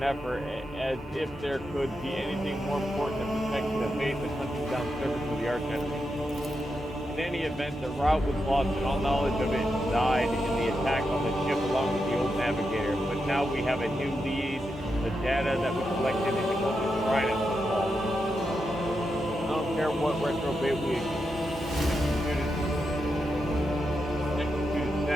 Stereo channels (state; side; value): normal; both; correlation 0.86